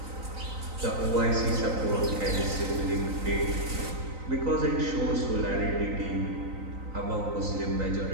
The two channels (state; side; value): late; left; 3.9 ms